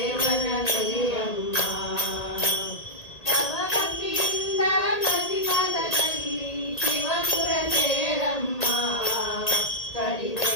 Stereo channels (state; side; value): late; right; 1.8 ms